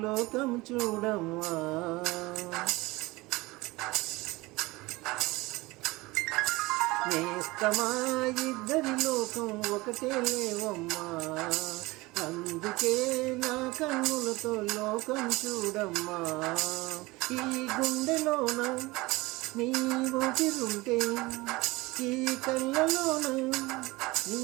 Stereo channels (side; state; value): left; quieter; 21.6 dB